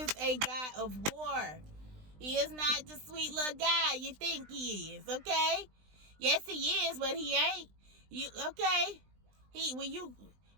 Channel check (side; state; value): left; late; 20 ms